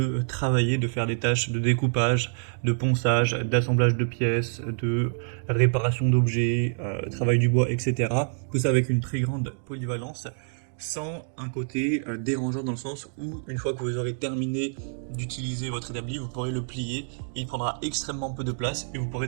travailler, de faire des tâches de découpage, de ponçage, d'assemblage de pièces, de réparation d'objets, travail du bois, etc. Tout ça avec une très grande polyvalence, sans un côté dérangeant dans le sens où, une fois que vous aurez terminé d'utiliser votre établi, vous pourrez le plier, il prendra extrêmement peu de place et vous pourrez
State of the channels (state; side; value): silent; left; digital silence